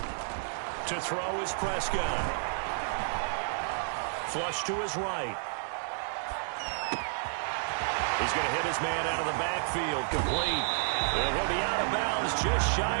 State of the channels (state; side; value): silent; left; digital silence